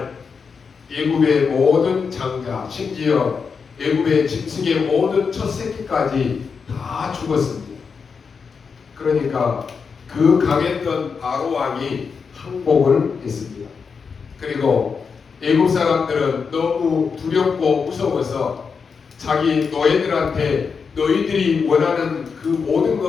애굽의 모든 장자, 심지어 애굽의 짐승의 모든 첫 새끼까지 다 죽었습니다. 그러니까 그 강했던 바로 왕이 항복을 했습니다. 그리고 애굽 사람들은 너무 두렵고 무서워서 자기 노예들한테 너희들이 원하는 그 모든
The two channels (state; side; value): quieter; right; 5.6 dB